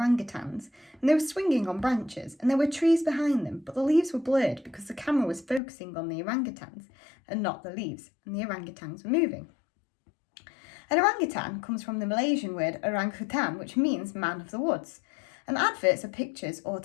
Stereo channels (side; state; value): right; drops out; at 5.6 s